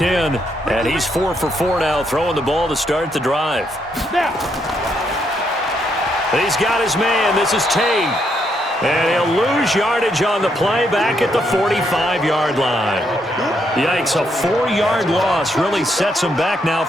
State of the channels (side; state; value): both; normal; correlation 0.76